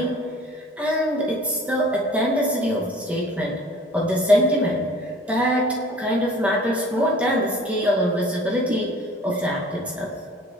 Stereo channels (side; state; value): both; normal; correlation 0.48